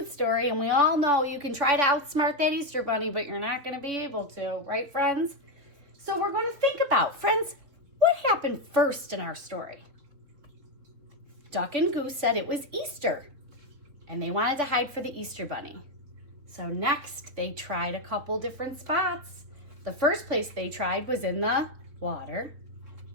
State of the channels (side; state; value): left; late; 3.9 ms